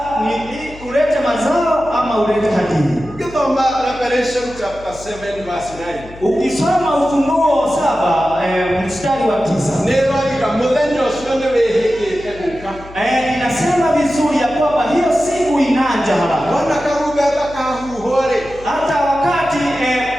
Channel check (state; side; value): noise; left; hum, 18 dB below the sound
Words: ni ulete mazao ama ulete hadithi. Revelation chapter 7 verse 9. Ukisoma Ufunuo 7 mstari wa 9. Inasema vizuri ya kwamba hiyo siku inaja haraka. Hata wakati